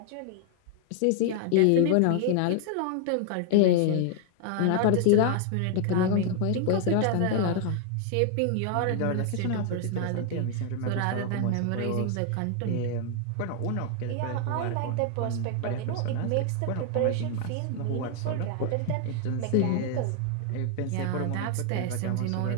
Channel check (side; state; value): both; different; correlation 0.00